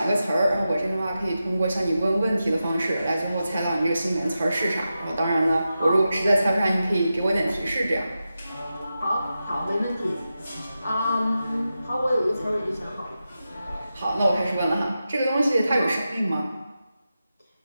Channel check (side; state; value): both; inverted; correlation -0.91